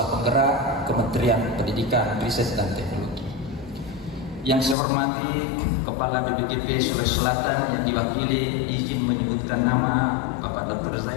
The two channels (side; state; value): right; drops out; at 4.8 s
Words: Penggerak Kementerian Pendidikan, Riset dan Teknologi. Yang saya hormati Kepala BPTP Sulawesi Selatan yang diwakili, izin menyebutkan nama Bapak Dr.